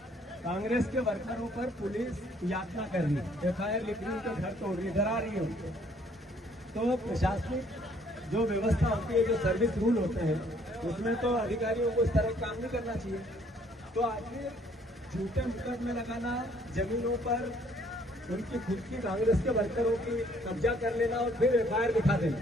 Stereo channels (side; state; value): both; normal; correlation 0.62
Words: कांग्रेस के वर्करों पर पुलिस यातना कर रही है, एफआईआर लिख रही है, उनके घर तोड़ रही है, डरा रही है उनको। तो प्रशासनिक जो व्यवस्था होती है, जो सर्विस रूल होते हैं, उसमें तो अधिकारियों को इस तरह काम नहीं करना चाहिए। तो आखिर झूठे मुकदमे लगाना, जमीनों पर उनकी खुद की कांग्रेस के वर्करों की कब्जा कर लेना और फिर एफआईआर दिखा देना,